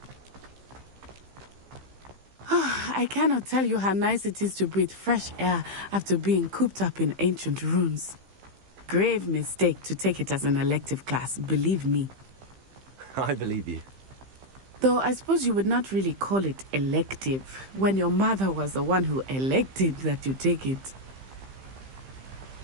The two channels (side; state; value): left; late; 15 ms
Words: I cannot tell you how nice it is to breathe fresh air after being cooped up in ancient ruins. Grave mistake to take it as an elective class, believe me. I believe you. Though I suppose you would not really call it elective when your mother was the one who elected that you take it.